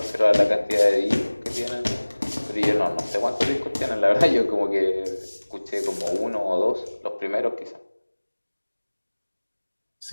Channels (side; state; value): both; inverted; correlation -1.00